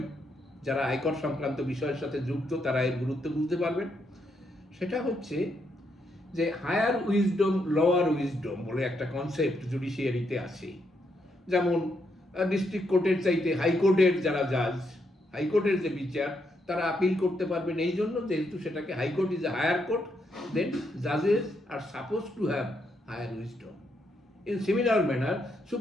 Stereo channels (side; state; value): both; normal; correlation 0.78